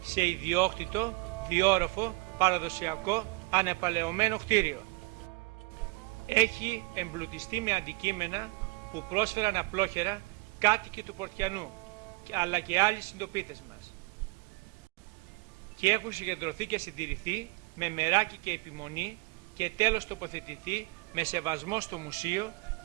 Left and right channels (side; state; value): left; quieter; 26.0 dB